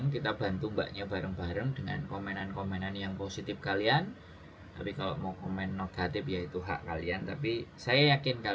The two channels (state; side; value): identical; both; correlation 1.00